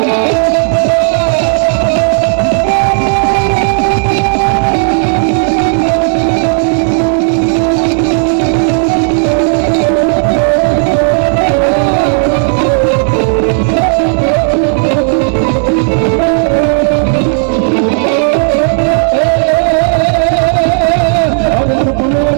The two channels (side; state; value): left; silent; 69 dB below the other